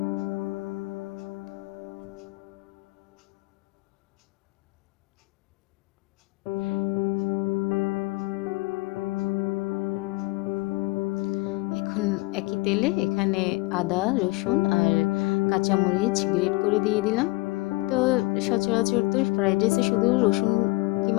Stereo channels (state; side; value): quieter; right; 22.6 dB